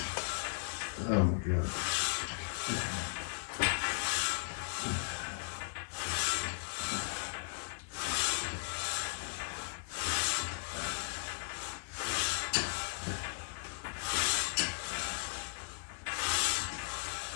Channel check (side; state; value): right; silent; digital silence